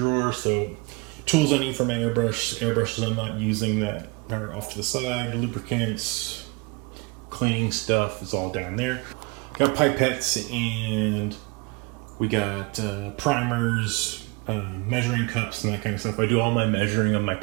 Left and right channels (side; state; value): left; quieter; 28.7 dB